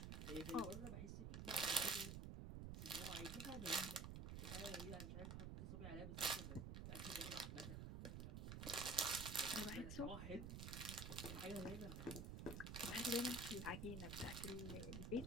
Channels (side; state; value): right; noise; rumble, 5 dB below the sound